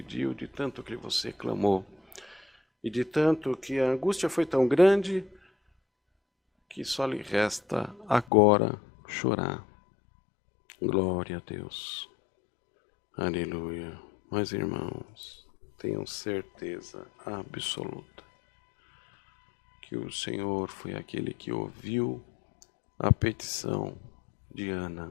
de tanto que você clamou, e de tanto que a angústia foi tão grande, que só lhe resta agora chorar. Glória a Deus. Aleluia. Mas, irmãos, tenham certeza absoluta que o Senhor foi aquele que ouviu a petição de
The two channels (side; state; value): right; drops out; at 8.2 s